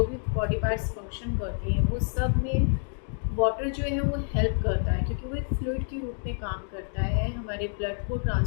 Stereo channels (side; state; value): right; silent; 59 dB below the other